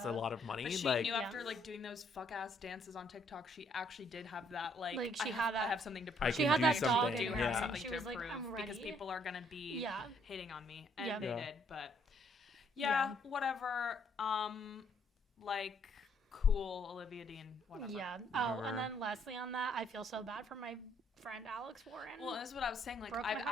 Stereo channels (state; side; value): normal; both; correlation 0.68